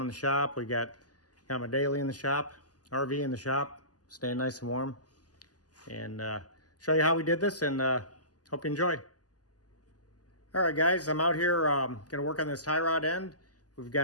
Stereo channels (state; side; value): late; right; 0.68 ms